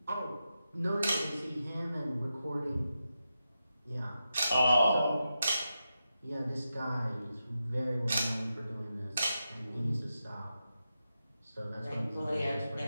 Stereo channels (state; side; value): inverted; both; correlation -0.89